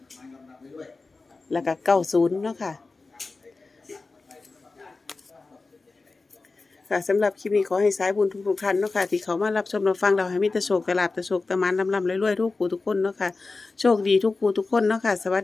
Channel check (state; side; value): quieter; right; 3.8 dB